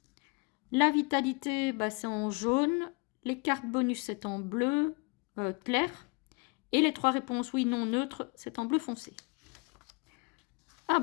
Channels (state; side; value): quieter; right; 30.2 dB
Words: La vitalité, bah, c'est en jaune. Les cartes bonus, c'est en bleu clair. Et les 3 réponses oui, non, neutre, c'est en bleu foncé. Ah